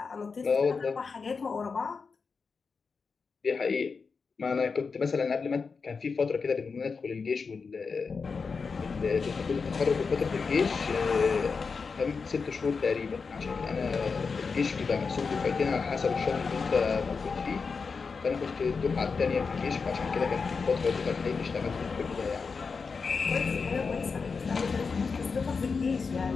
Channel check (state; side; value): quieter; right; 5.0 dB